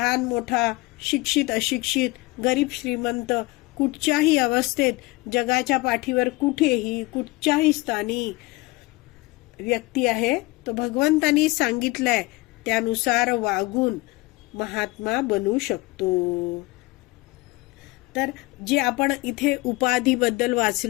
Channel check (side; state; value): right; quieter; 22.4 dB